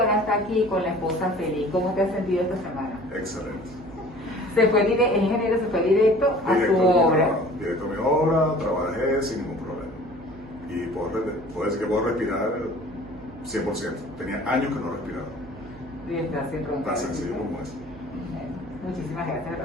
está aquí con la esposa feliz. ¿Cómo te has sentido esta semana? Excelente. El ingeniero se fue directo a su obra. Directo a mi obra, trabajé sin ningún problema. Y puedo decir que puedo respirar 100%. Tenía años que no respiraba. Y está sin roncar. Tan sencillo como eso. Muchísimas gracias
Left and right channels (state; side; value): noise; right; hum, 18 dB below the sound